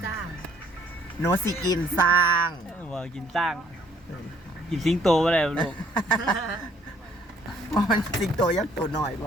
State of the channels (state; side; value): normal; both; correlation 0.62